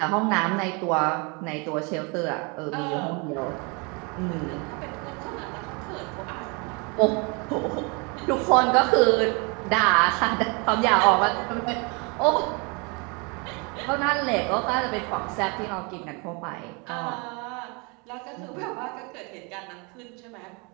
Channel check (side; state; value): left; quieter; 31.2 dB